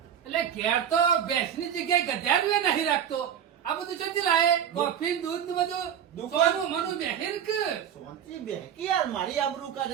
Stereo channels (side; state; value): left; quieter; 9.1 dB